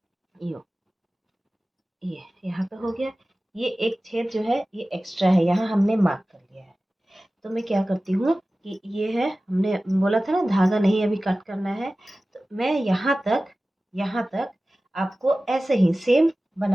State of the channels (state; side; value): normal; both; correlation 0.96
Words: ये यहाँ पे हो गया। ये एक छेद जो है ये एक्स्ट्रा है, यहाँ हमने मार्क कर लिया है। तो मैं क्या करती हूँ कि ये है, हमने बोला था ना धागा नहीं अभी कट करना है, तो मैं यहाँ तक आपको ऐसे ही सेम